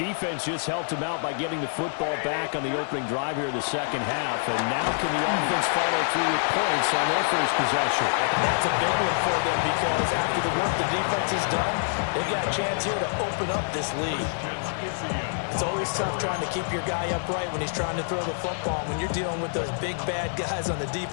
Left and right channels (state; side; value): silent; right; 56 dB below the other